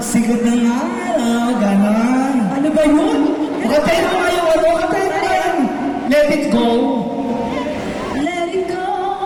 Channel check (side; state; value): both; identical; correlation 1.00